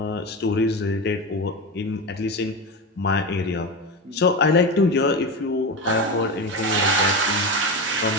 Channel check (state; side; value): normal; both; correlation 0.20